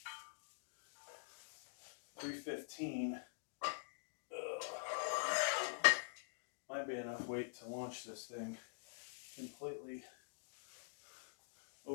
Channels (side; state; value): right; silent; digital silence